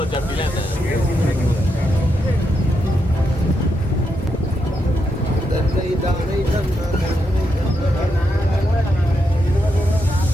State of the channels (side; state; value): both; normal; correlation 0.83